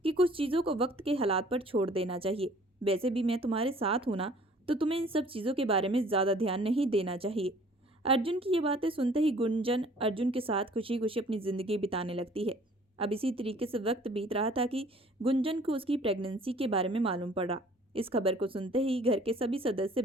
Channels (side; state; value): both; normal; correlation 0.54